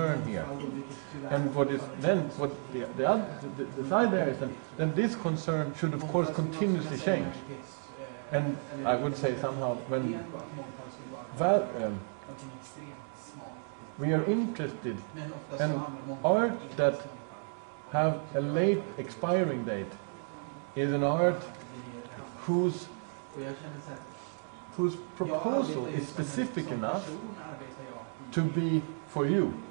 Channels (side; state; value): left; silent; 56 dB below the other